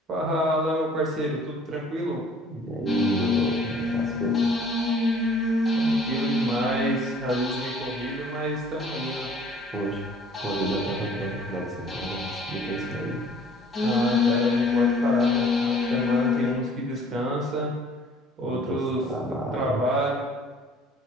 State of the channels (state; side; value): normal; both; correlation 0.54